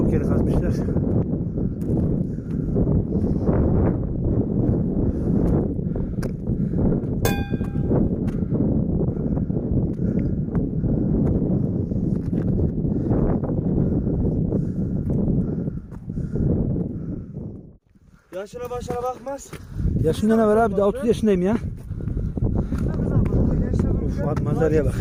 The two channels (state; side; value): identical; both; correlation 1.00